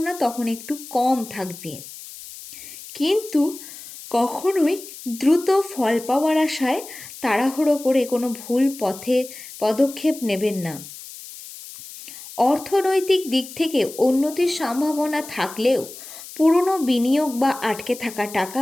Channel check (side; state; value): left; noise; hiss, 15 dB below the sound